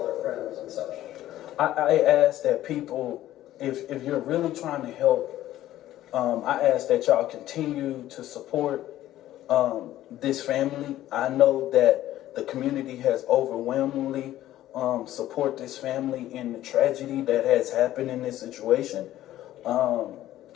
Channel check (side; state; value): right; quieter; 13.8 dB